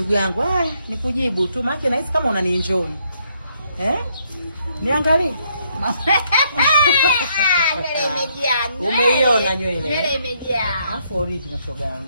yangu. Nikujibu tu maana nahisi kama unanienjoy. Niangalie. Nywele imejaa. Umeiona nywele? Nywele imejaa. Afu original shoga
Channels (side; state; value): both; inverted; correlation -0.72